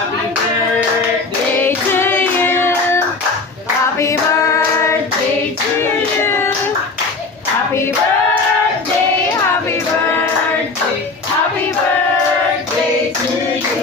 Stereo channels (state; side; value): quieter; right; 3.9 dB